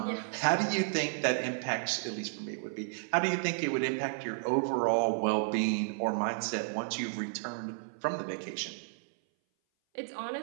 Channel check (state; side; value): silent; left; 56 dB below the other